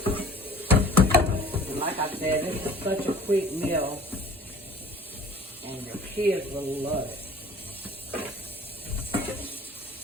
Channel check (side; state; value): both; normal; correlation 0.48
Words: And like I said, this is such a quick meal, and your kids will love it.